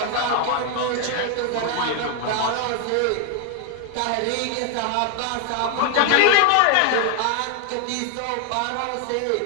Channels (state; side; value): different; both; correlation 0.00